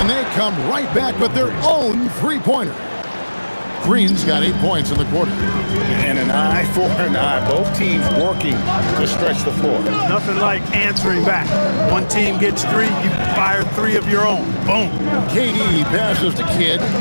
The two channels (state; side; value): inverted; both; correlation -1.00